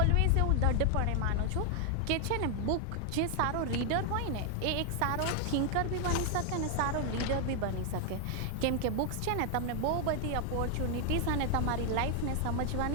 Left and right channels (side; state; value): both; different; correlation 0.00